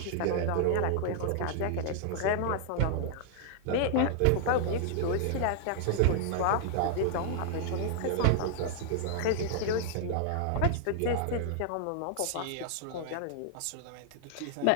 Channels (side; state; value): both; different; correlation -0.01